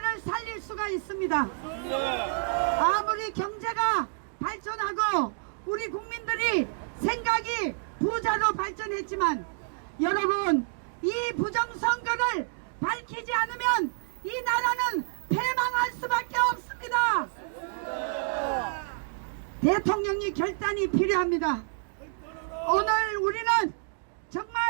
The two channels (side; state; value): left; silent; digital silence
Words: 살릴 수가 있습니다. 아무리 경제가 발전하고 우리 국민들이 생각이 부자로 발전했지만 여러분, 이 부정선거를 밝히지 않으면 이 나라는 패망할 수밖에 없습니다. 대통령이 결단이 필요합니다. 오늘 우리는